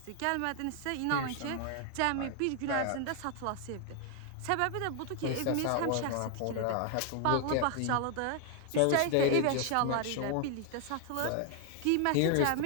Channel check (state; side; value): different; both; correlation 0.00